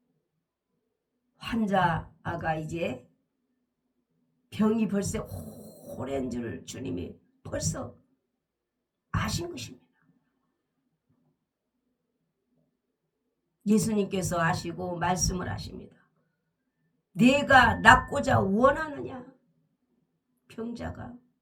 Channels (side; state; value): both; identical; correlation 1.00